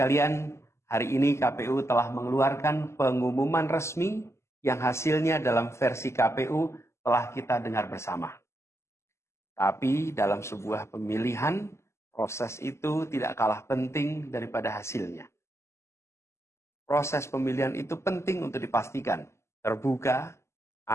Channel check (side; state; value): right; late; 0.13 ms